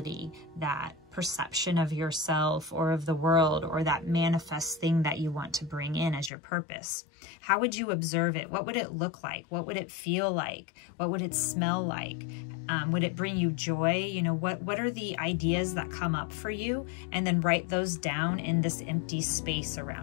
that perception of yourself or of the world, or that manifest thing that you want to bring in as your purpose? How would you observe it? What would it look like? What would it feel like? What would it smell like? Would it bring you joy? You know, what are the ideas that come up for you? And then write those down in this empty space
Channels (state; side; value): drops out; right; at 6.3 s